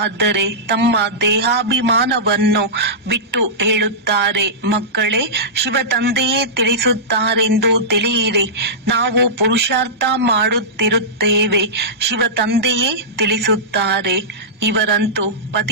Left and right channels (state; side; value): normal; both; correlation -0.16